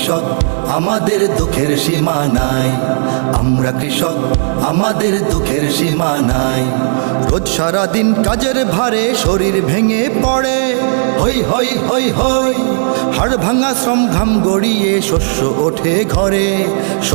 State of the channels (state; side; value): silent; left; digital silence